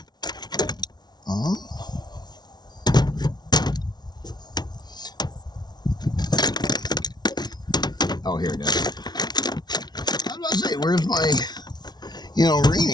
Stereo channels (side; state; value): right; late; 0.20 ms